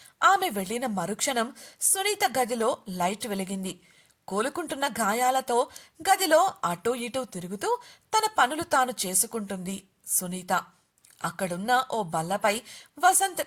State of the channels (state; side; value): identical; both; correlation 1.00